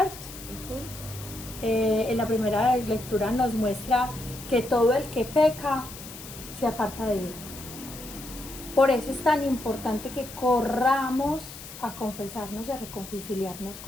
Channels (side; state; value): left; noise; hiss, 14 dB below the sound